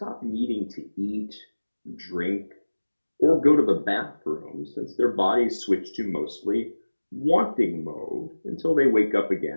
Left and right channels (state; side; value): inverted; both; correlation -1.00